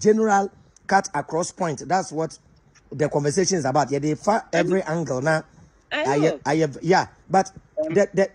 cut across point. That's what the conversation is about. Yeah, they far every angle now. But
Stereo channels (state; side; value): identical; both; correlation 1.00